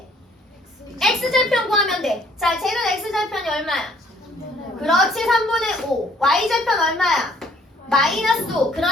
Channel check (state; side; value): normal; both; correlation 0.61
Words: x절편 구하면 돼. 자, 쟤는 x절편이 얼마야? 그렇지, 3분의 5. y절편 얼마야? 마이너스 5.